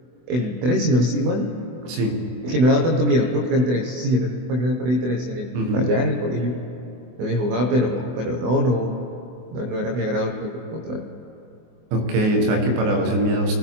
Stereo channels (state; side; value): late; left; 24 ms